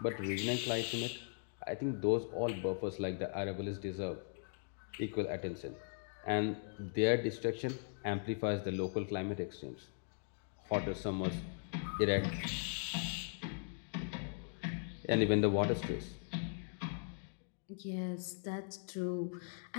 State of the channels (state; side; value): silent; right; digital silence